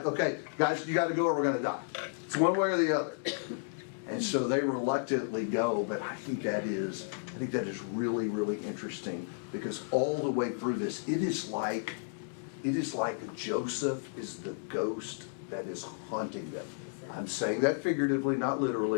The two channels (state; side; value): silent; right; 56 dB below the other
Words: okay, guys, you gotta go or we're gonna die. It's one way or the other. And so they reluctantly go, but I think that is really, really interesting, because all the way through this, it is like Joseph is the ghost that is haunting them. I'm saying that figuratively, not